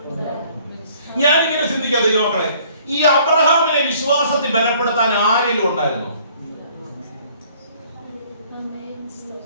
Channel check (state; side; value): inverted; both; correlation -0.58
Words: ഞാനിങ്ങനെ ചിന്തിക്കാം ദൈവമക്കളെ, ഈ അബ്രഹാമിനെ വിശ്വാസത്തിൽ ബലപ്പെടുത്താൻ ആരെങ്കിലും ഉണ്ടായിരുന്നോ?